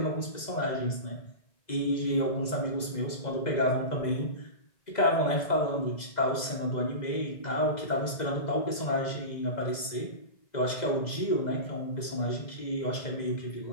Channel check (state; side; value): late; right; 2.0 ms